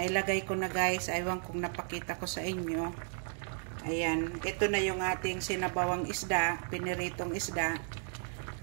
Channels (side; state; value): left; silent; 55 dB below the other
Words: ko na guys, aywan kung napakita ko sa inyo. Ayan, ito na yung ating sinabawang isda, piniritong isda.